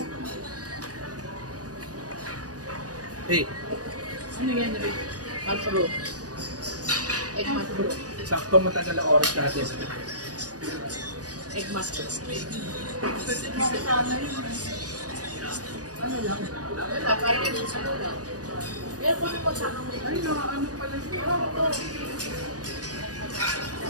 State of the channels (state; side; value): late; left; 0.68 ms